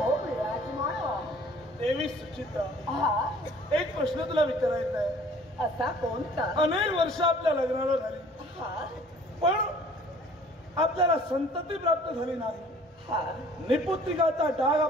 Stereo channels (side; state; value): both; normal; correlation 0.52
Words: विराजमान देवी सुचित्रा, हा एक प्रश्न तुला विचारायचा आहे. असा कोणता? अनेक वर्ष आपल्या लग्नाला झाली, हा पण आपल्याला संतती प्राप्त झाली नाही. हा निपुत्रिकाचा डाग